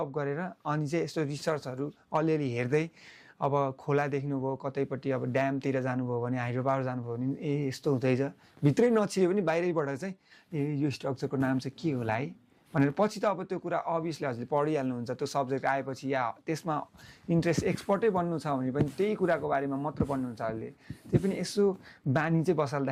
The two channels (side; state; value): both; identical; correlation 1.00